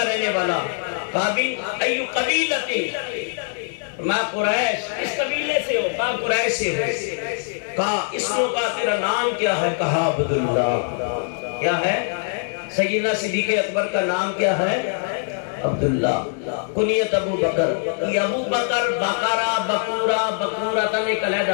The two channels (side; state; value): right; silent; 63 dB below the other